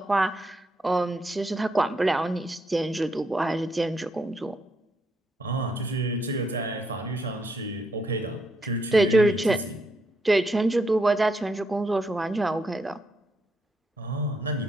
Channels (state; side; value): normal; both; correlation 0.77